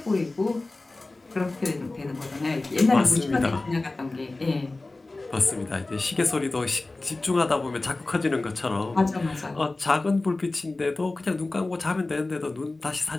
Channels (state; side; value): quieter; right; 3.1 dB